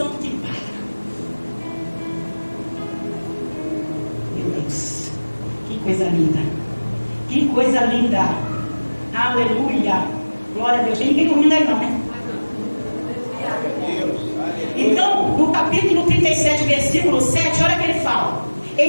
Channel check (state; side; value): inverted; both; correlation -1.00